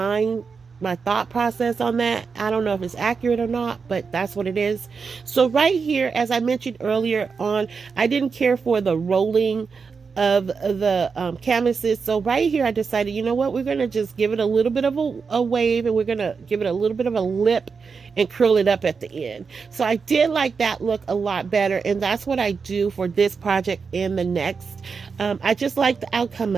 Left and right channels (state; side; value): quieter; left; 5.3 dB